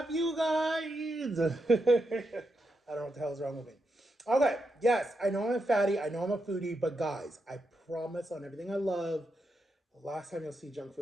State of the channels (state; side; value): normal; both; correlation 0.84